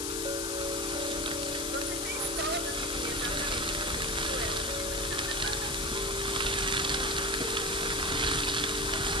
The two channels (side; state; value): left; noise; hiss, 1 dB below the sound